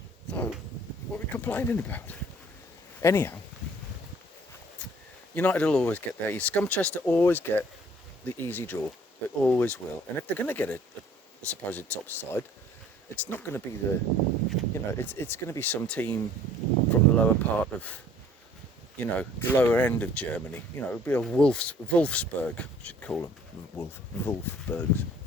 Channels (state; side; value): normal; both; correlation 0.55